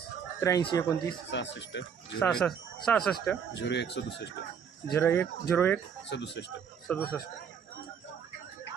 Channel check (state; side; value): quieter; left; 7.2 dB